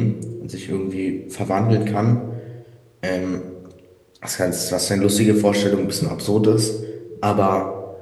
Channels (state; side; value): identical; both; correlation 1.00